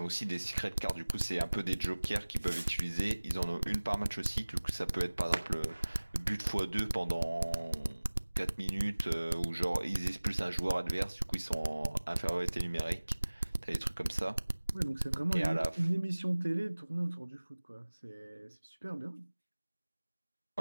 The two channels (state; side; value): inverted; both; correlation -1.00